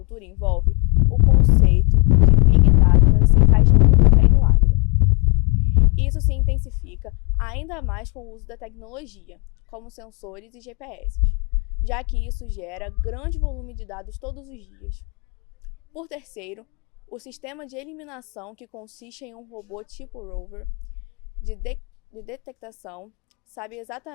envolve, o conceito de Big Data se encaixa muito bem no agro. Isso se intensifica ainda mais com o uso da tecnologia, como sensores e GPS, já que isso gera grande volume de dados todos os dias. Por terceiro, o sistema de eliminação, que consiste em um robô tipo rover de detectação, sabe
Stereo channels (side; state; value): right; quieter; 31.0 dB